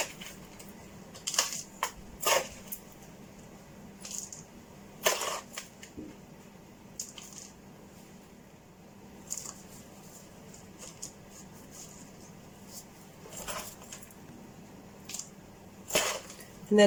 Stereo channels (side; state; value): both; identical; correlation 1.00